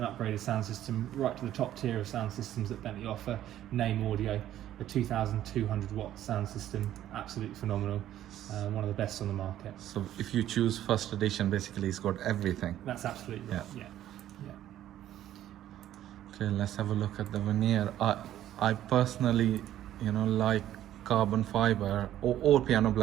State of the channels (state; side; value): quieter; left; 12.3 dB